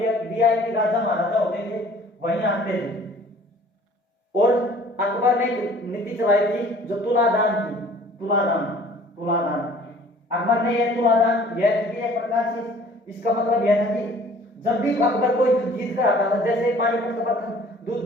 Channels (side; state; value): both; normal; correlation 0.51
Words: वीआईपी राजा महाराजा होते थे वहीं आते थे। और अकबर ने एक नीति चलाई थी जो तुलादान थी, तुलादान, तुलादान। अकबर ने यह तुलादान यह थी एक प्रकार से, इसका मतलब यह था कि जब भी अकबर कोई युद्ध जीत कर आता था, जैसे पानीपत का प्रथम